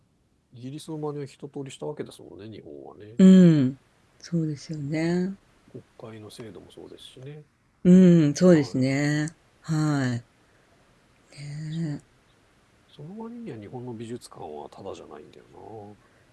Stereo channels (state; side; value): identical; both; correlation 1.00